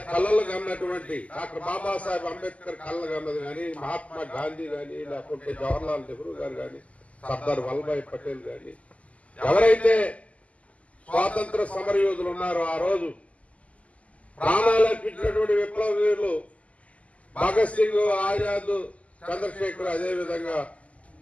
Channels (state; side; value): late; right; 0.067 ms